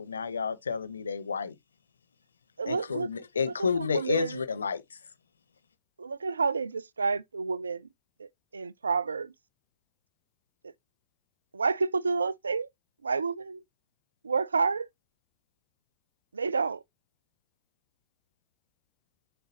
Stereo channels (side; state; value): both; inverted; correlation -0.85